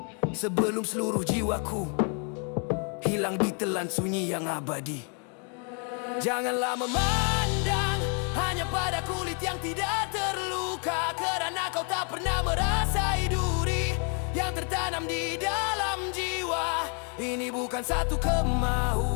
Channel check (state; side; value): quieter; right; 39.9 dB